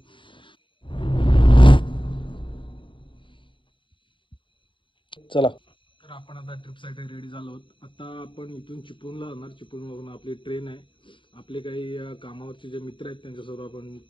चला, तर आपण आता ट्रिपसाठी रेडी झालो आहोत. आता आपण इथून चिपळूणला जाणार. चिपळूणवरून आपली ट्रेन आहे. आपले काही कामावरचे जे मित्र आहेत त्यांच्यासोबत आपण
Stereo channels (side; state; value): right; late; 0.24 ms